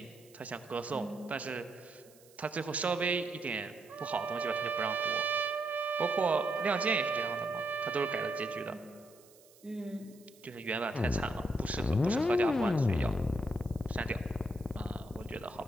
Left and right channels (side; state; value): right; noise; hiss, 26 dB below the sound